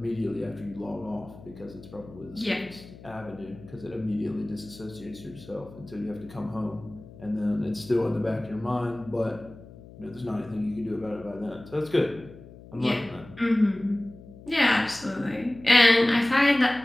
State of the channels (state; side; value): noise; left; hum, 18 dB below the sound